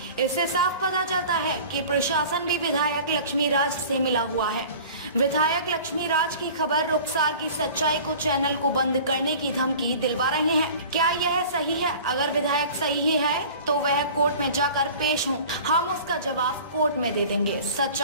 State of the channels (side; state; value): both; inverted; correlation -0.42